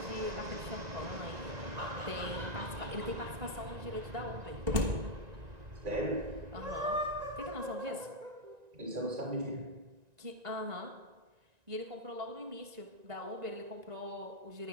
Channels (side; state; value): left; late; 1.9 ms